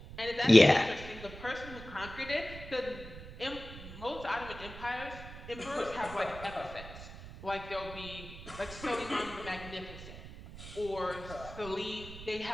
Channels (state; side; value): noise; right; rumble, 13 dB below the sound